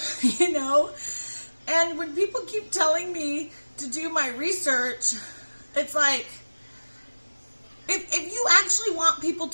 you know? And when people keep telling me to do my research, it's like, if you actually want people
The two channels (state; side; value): inverted; both; correlation -1.00